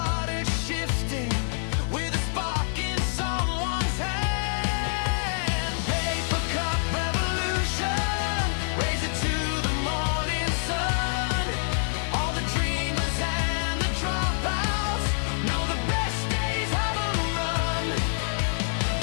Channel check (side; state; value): right; silent; 60 dB below the other